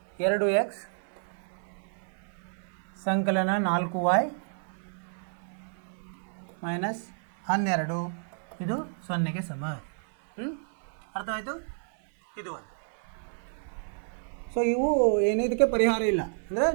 2x ಸಂಕಲನ 4y - 12 ಇದು 0ಗೆ ಸಮ. ಅರ್ಥವಾಯಿತು? ಇದು ಒಂದು. ಸೊ ಇವು ಏನು, ಇದಕ್ಕೆ ಪರಿಹಾರ ಇಲ್ಲ. ಅಂದರೆ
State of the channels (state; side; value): silent; left; 58 dB below the other